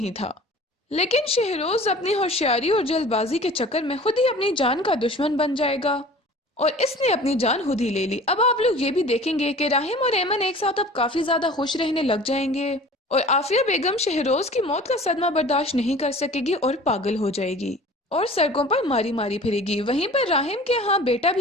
تھا۔ لیکن شہروز اپنی ہوشیاری اور جلد بازی کے چکر میں خود ہی اپنی جان کا دشمن بن جائے گا اور اس نے اپنی جان خود ہی لے لی۔ اب آپ لوگ یہ بھی دیکھیں گے کہ راہم اور ایمن ایک ساتھ اب کافی زیادہ خوش رہنے لگ جائیں گے اور عافیہ بیگم شہروز کی موت کا صدمہ برداشت نہیں کر سکے گی اور پاگل ہو جائے گی اور سڑکوں پر ماری ماری پھرے گی۔ وہیں پر راہم کے ہاں بیٹا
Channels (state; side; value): normal; both; correlation 0.44